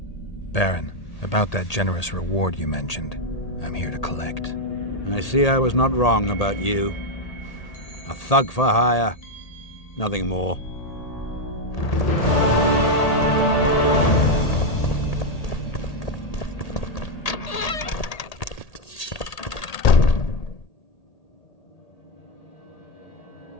Baron, about that generous reward you mentioned, I'm here to collect. I see I was not wrong about you. A thug for hire, nothing more.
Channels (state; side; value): late; right; 1.8 ms